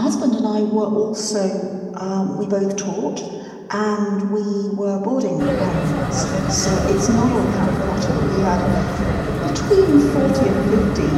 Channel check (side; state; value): both; identical; correlation 1.00